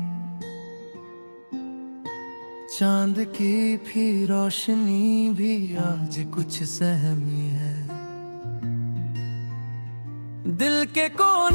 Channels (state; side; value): inverted; both; correlation -1.00